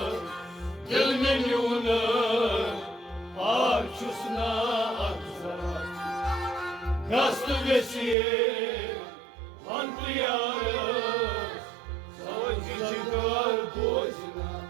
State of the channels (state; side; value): drops out; left; at 8.2 s